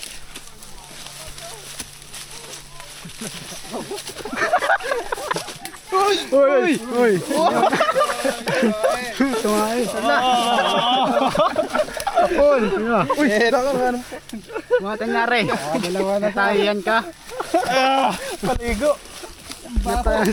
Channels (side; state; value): both; identical; correlation 1.00